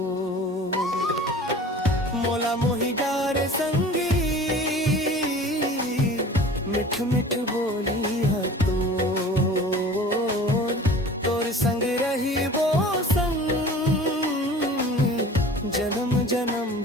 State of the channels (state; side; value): normal; both; correlation 0.42